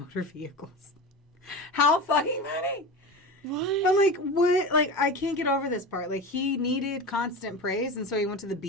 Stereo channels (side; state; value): both; normal; correlation 0.28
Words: Vehicles. How fucking funny! What? I'm like, what? Like, I can't get over this part. Like, he needed constant praise, and so he went to the